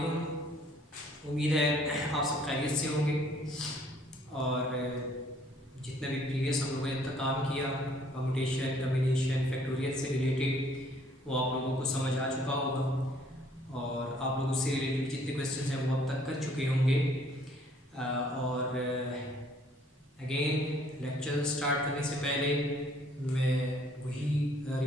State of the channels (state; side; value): normal; both; correlation 0.61